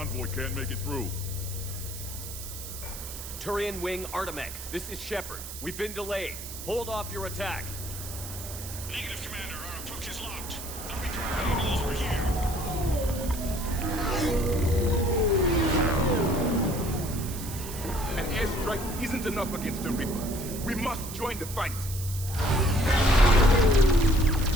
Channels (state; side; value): noise; right; hiss, 10 dB below the sound